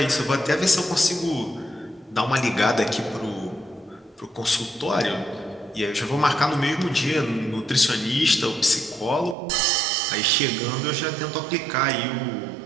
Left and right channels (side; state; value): left; drops out; at 9.3 s